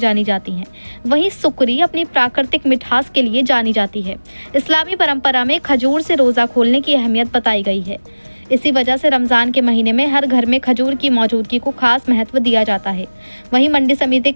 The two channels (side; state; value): both; inverted; correlation -1.00